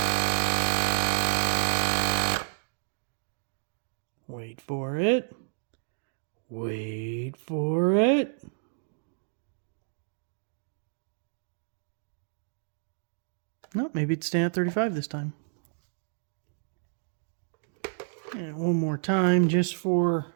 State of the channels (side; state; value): left; silent; digital silence